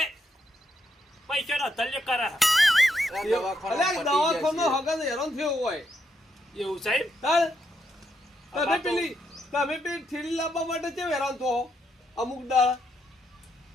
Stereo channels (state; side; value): normal; both; correlation 0.79